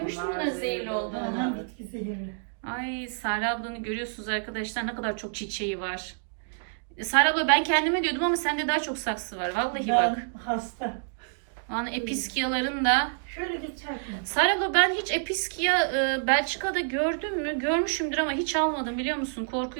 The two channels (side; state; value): left; silent; digital silence